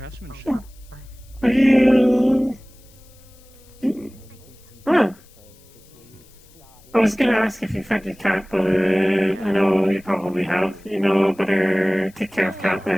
Are you? Huh. I was gonna ask if you fed your cat, but I know you probably have. You know, better take care of cat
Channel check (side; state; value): left; noise; hiss, 28 dB below the sound